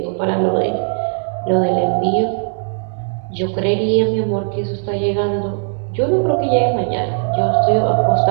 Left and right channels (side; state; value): left; silent; digital silence